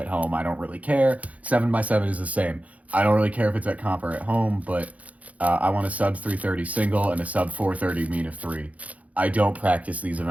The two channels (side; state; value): left; late; 0.068 ms